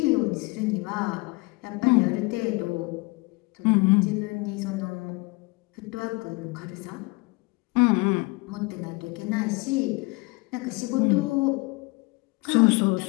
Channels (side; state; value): right; quieter; 25.7 dB